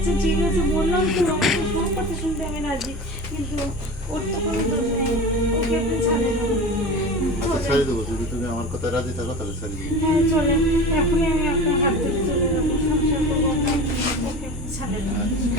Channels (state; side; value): normal; both; correlation 0.32